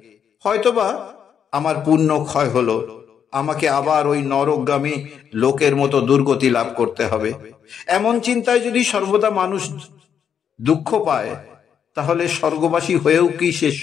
হয়তোবা আমার পুণ্য ক্ষয় হলো, আমাকে আবার ওই নরকগামী লোকের মতো দুর্গতি লাভ করতে হবে। এমন চিন্তায় যদি সর্বদা মানুষ দুঃখ পায়, তাহলে স্বর্গবাসী হয়েও কি সে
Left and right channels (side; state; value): right; quieter; 8.0 dB